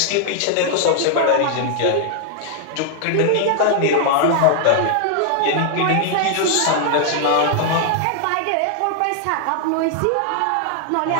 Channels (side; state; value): both; different; correlation 0.00